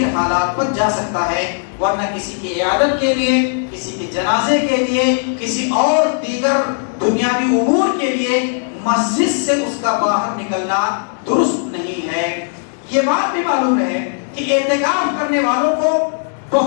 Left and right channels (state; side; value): silent; right; digital silence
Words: حالات پر جا سکتا ہے، ورنہ کسی کی عیادت کے لیے، کسی کے جنازے کے لیے، کسی اور دیگر دنیاوی امور کے لیے مسجد سے اس کا باہر نکلنا درست نہیں ہے۔ یہ بات بھی معلوم ہے کہ اعتکاف کرنے والوں کو